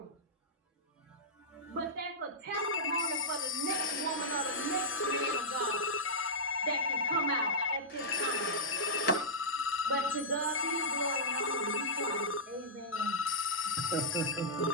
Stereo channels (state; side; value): normal; both; correlation -0.12